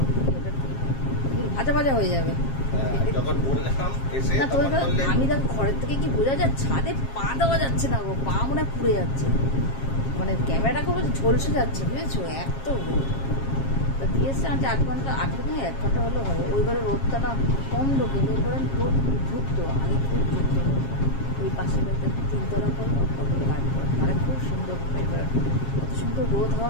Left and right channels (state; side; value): late; right; 7.4 ms